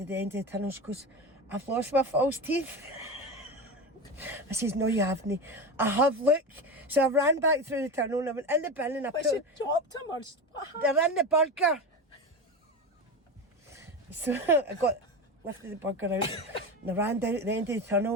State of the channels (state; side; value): normal; both; correlation 0.22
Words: the end of the tunnel. She goes, I've lost my false teeth. I says, no, you haven't. I have, look. So I ran back through the tunnel and I went in the bin and I she dropped him, or what happened? They're in the burger. So I lifted the burger out and I ran down at the end of the